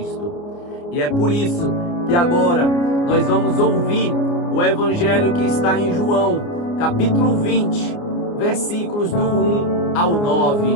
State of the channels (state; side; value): late; right; 29 ms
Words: E é por isso que agora nós vamos ouvir o evangelho que está em João, capítulo 20, versículos do 1 ao